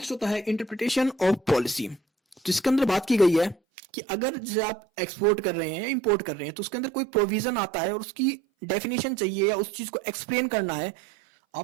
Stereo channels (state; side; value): drops out; left; at 3.6 s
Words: होता है इंटरप्रिटेशन ऑफ पॉलिसी। तो इसके अंदर बात की गई है कि अगर जैसे आप एक्सपोर्ट कर रहे हैं या इंपोर्ट कर रहे हैं तो उसके अंदर कोई प्रोविजन आता है और उसकी डेफिनेशन चाहिए या उस चीज को एक्सप्लेन करना है,